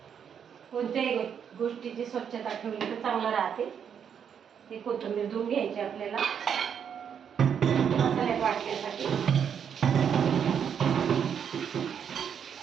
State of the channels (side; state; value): left; quieter; 7.8 dB